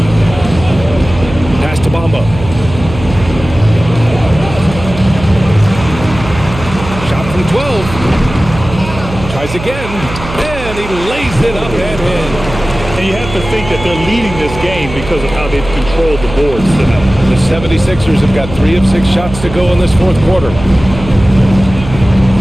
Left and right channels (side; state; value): right; noise; hum, 11 dB below the sound